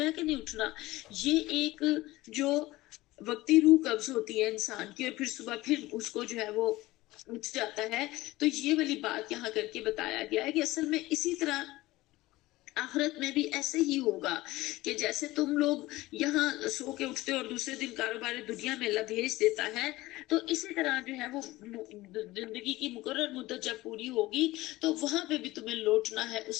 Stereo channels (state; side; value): quieter; right; 18.6 dB